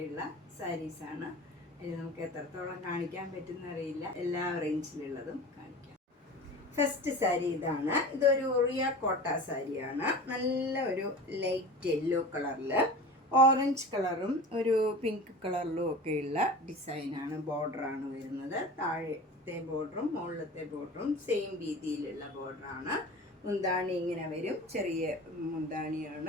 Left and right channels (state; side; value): normal; both; correlation 0.35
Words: സാരീസാണ്. ഇത് നമുക്ക് എത്രത്തോളം കാണിക്കാൻ പറ്റുന്ന അറിയില്ല, എല്ലാ റേഞ്ചിലുള്ളതും കാണിക്കാം. ഫസ്റ്റ് സാരി ഇതാണ്. ഇതൊരു ഒറിയ കോട്ട സാരിയാണ്. നല്ല ഒരു ലൈറ്റ് യെല്ലോ കളറിൽ ഓറഞ്ച് കളറും ഒരു പിങ്ക് കളറിലും ഒക്കെയുള്ള ഡിസൈനാണ്. ബോർഡറാണ് വരുന്നത്. താഴത്തെ ബോർഡറും മുകളിലത്തെ ബോർഡറും സെയിം രീതിയിലുള്ള ബോർഡറാണ്. മുന്താണി ഇങ്ങനെ വരും, ചെറിയ